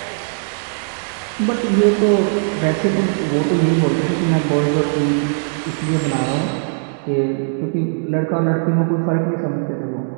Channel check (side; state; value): left; silent; digital silence